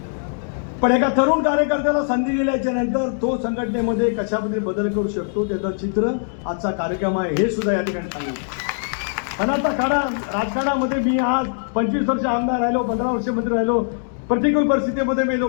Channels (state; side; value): silent; right; digital silence